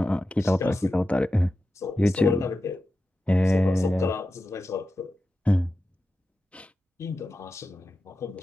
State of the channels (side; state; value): both; normal; correlation 0.92